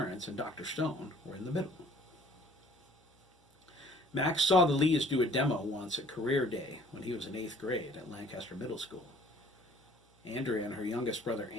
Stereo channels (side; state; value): both; normal; correlation 0.55